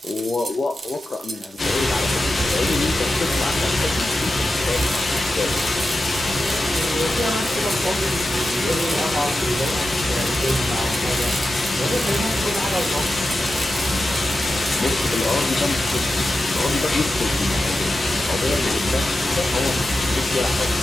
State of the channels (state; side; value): normal; both; correlation 0.91